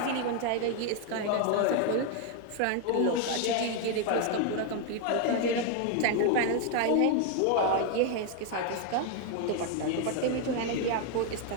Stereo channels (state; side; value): different; both; correlation 0.01